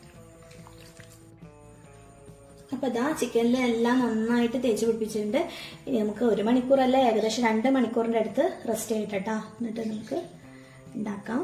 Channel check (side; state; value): both; identical; correlation 1.00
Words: അപ്പൊ ചിക്കനിലെല്ലാം നന്നായിട്ട് തേച്ച് പിടിപ്പിച്ചിട്ടുണ്ട്. ഇനി നമുക്ക് 1 മണിക്കൂറല്ല, ഏകദേശം 2 മണിക്കൂറിന്റെ അടുത്ത് റെസ്റ്റ് ചെയ്യട്ടെ. എന്നിട്ട് നമുക്ക് ഉണ്ടാക്കാം.